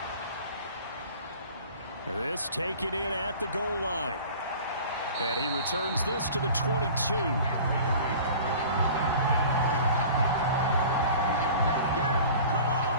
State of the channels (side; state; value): both; inverted; correlation -0.43